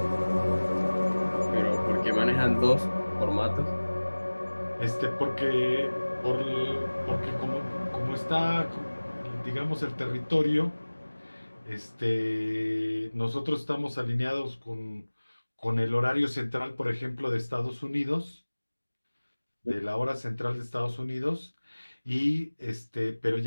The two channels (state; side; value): inverted; both; correlation -1.00